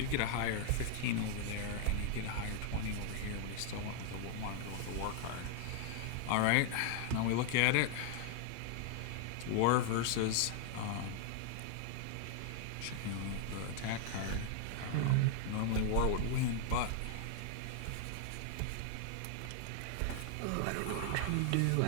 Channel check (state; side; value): different; both; correlation 0.00